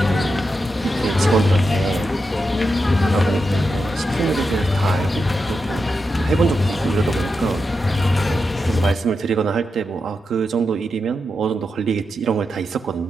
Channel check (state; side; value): normal; both; correlation 0.87